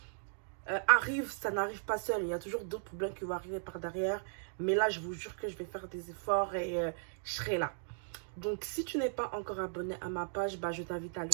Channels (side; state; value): left; silent; digital silence